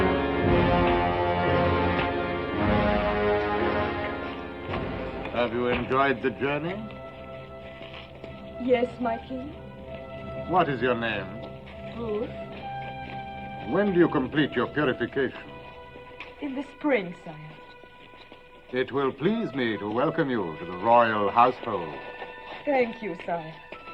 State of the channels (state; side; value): identical; both; correlation 1.00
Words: Have you enjoyed the journey? Yes, my king. What is your name? Ruth. When do you complete your purification? In the spring, sire. It will please me to welcome you to the royal household. Thank you, sire.